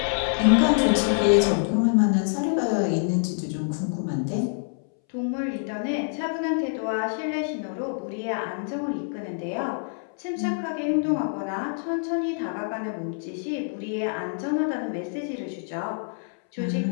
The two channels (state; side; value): silent; right; 61 dB below the other